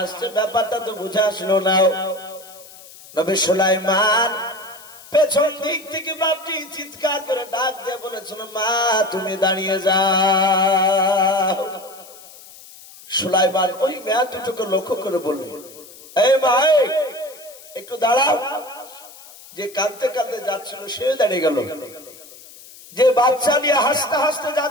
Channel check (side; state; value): left; noise; hiss, 20 dB below the sound